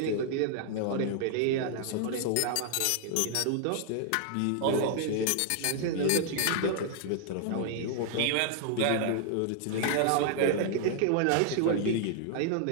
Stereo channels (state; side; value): different; both; correlation 0.00